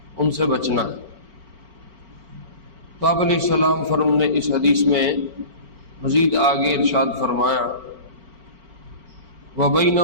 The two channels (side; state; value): left; late; 4.4 ms